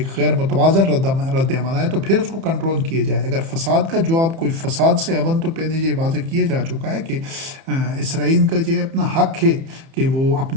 غیر متوازن رد عمل آئے تو پھر اس کو کنٹرول کیا جائے۔ اگر فساد کا جواب کوئی فساد سے اول تو پہلے یہ واضح کیا جا چکا ہے کہ اسرائیل کا یہ اپنا حق ہے کہ وہ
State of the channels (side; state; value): left; late; 30 ms